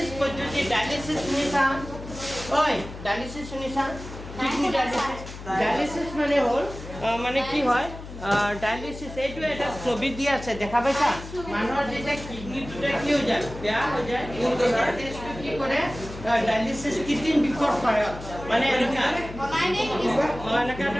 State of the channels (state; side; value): noise; left; hum, 12 dB below the sound